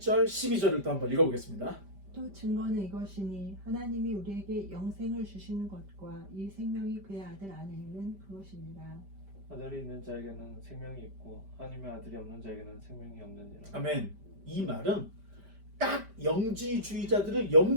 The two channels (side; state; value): left; late; 5.1 ms